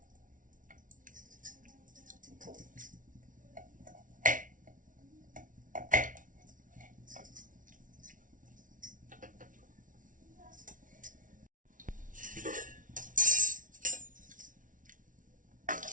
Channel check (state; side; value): late; left; 0.38 ms